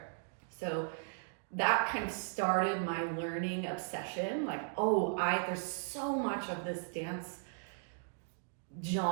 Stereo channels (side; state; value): left; silent; digital silence